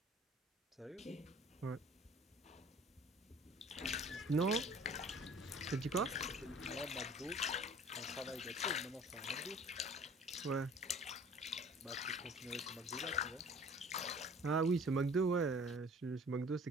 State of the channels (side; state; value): both; normal; correlation 0.48